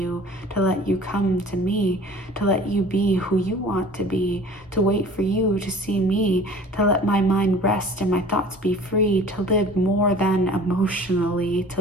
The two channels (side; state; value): both; normal; correlation 0.46